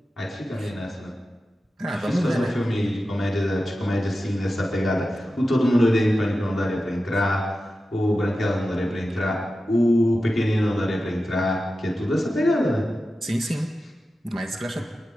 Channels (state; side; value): normal; both; correlation 0.93